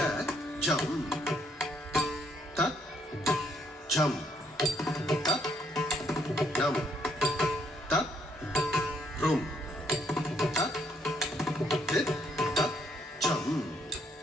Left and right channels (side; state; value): both; normal; correlation 0.70